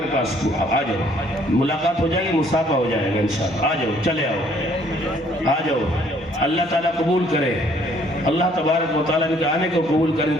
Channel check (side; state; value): both; normal; correlation 0.62